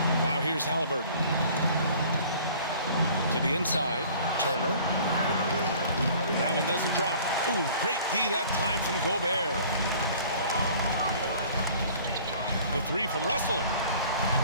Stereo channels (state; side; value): inverted; both; correlation -0.50